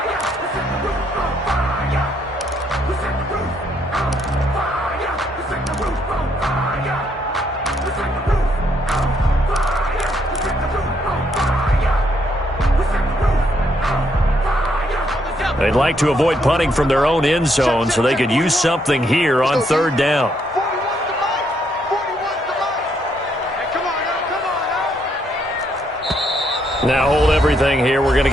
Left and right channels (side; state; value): both; normal; correlation 0.73